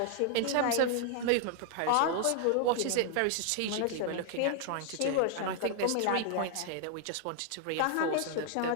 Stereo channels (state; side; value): different; both; correlation 0.00